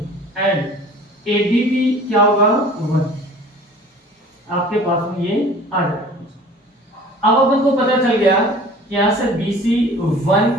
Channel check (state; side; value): normal; both; correlation 0.46